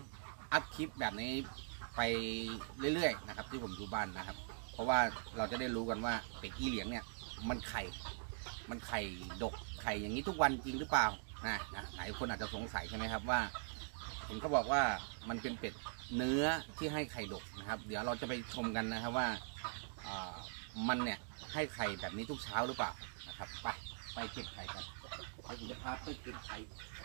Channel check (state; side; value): silent; left; digital silence